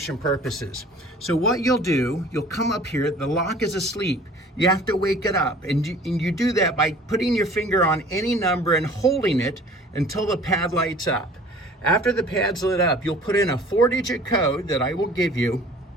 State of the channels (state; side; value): normal; both; correlation 0.49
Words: purposes. So what you'll do, you'll come up here, the lock is asleep. You have to wake it up, and you do that by putting your finger on any number and holding it until the pad lights up. After the pad's lit up, you'll put in a 4-digit code that I will give you,